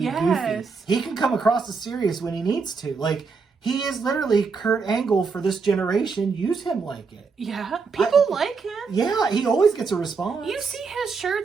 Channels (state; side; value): quieter; left; 4.9 dB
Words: goofy. He can come across as serious when he needs to. Like, He is literally Kurt Angle for this generation. Use him like it. Yeah. People like him. Yeah, he always gets a response. You see his